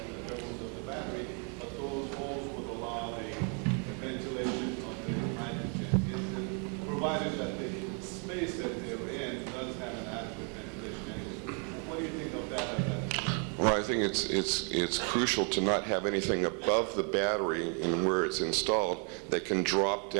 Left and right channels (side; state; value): left; quieter; 39.7 dB